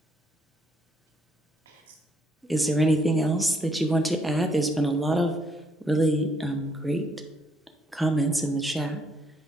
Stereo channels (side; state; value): both; normal; correlation 0.71